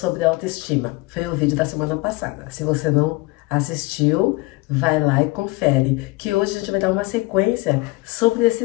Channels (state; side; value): quieter; right; 23.0 dB